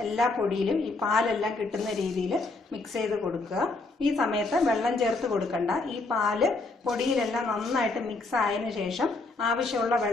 എല്ലാ പൊടിയിലും ഈ പാലെല്ലാം കിട്ടുന്ന രീതിയിൽ മിക്സ് ചെയ്ത് കൊടുക്കുക. ഈ സമയത്ത് വെള്ളം ചേർത്ത് കൊടുക്കണ്ട. ഈ പാല് പൊടിയിലെല്ലാം നന്നായിട്ട് മിക്സ് ആയതിനു ശേഷം ആവശ്യമുള്ള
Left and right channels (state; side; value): quieter; right; 3.4 dB